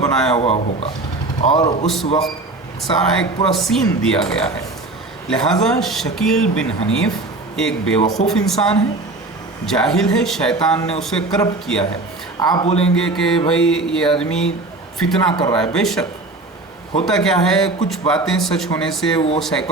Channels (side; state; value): left; quieter; 3.1 dB